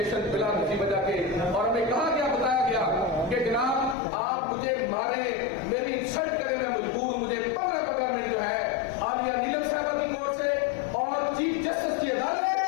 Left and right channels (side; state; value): right; drops out; at 4.0 s